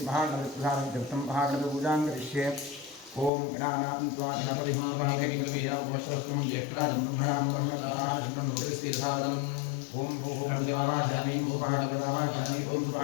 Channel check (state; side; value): drops out; right; at 3.3 s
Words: तीर्थं महागणपतिपूजां करिष्ये ओम गणानान्त्वा गणपतिं वागेन्द्रवियावमस्तुं ज्येष्ठराजं ब्रह्मणां ब्रह्मणाशनं भूतिस्थिरसादनम् ओम भूः देवावाहयामि भूभागदेवावाहयामि ओम